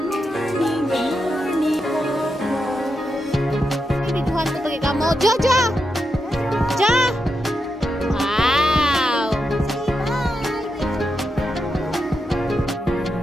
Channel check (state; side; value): normal; both; correlation 0.86